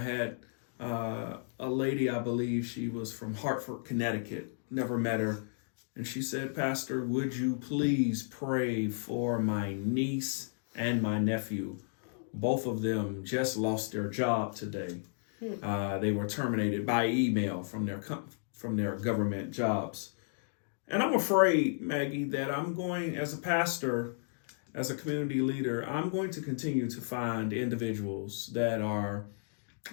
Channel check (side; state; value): right; silent; digital silence